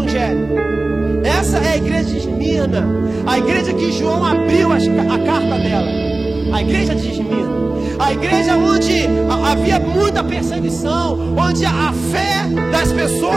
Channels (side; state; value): left; quieter; 3.0 dB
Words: Essa é a igreja de Esmirna, a igreja que João abriu a carta dela. A igreja de Esmirna, a igreja onde havia muita perseguição, onde a fé das